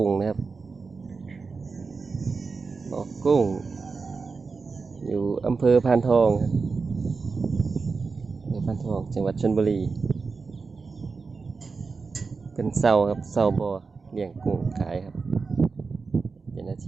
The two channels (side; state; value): left; quieter; 4.6 dB